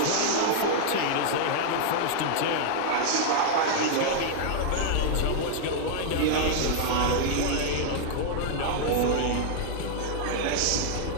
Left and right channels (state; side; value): different; both; correlation -0.01